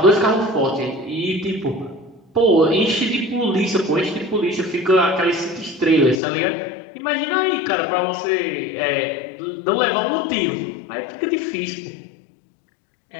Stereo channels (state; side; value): drops out; right; at 6.2 s